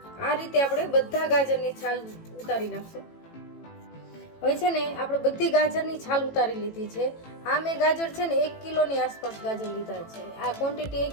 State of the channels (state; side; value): late; right; 18 ms